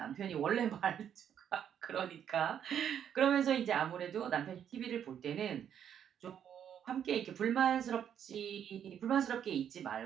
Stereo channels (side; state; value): left; quieter; 9.1 dB